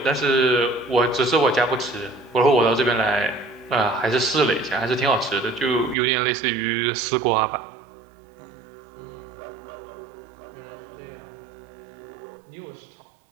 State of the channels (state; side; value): drops out; left; at 6.0 s